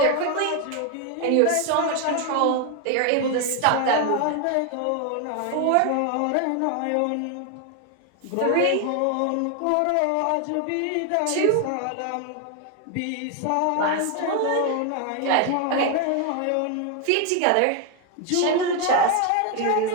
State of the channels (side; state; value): both; different; correlation 0.01